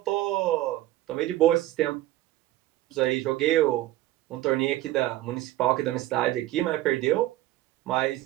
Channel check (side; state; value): left; quieter; 15.6 dB